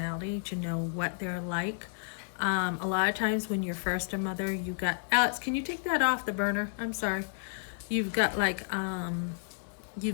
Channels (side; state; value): right; silent; 57 dB below the other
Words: to know what they're like. A lot of times when you're first a mother, Alex, can you take that off the burner? I'm sorry. You've got like a